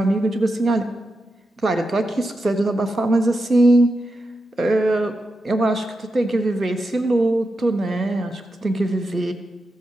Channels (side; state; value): both; normal; correlation 0.88